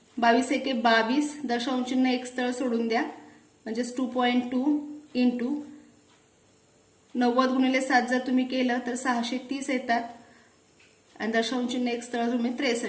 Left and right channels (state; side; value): identical; both; correlation 1.00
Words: 22 एके 22, दशांश एक स्थळ सोडून द्या म्हणजेच 2.2 इंटू 90 गुणिले 7 जर तुम्ही केलं तर 630 येतात आणि दशांश एक स्थळ तुम्ही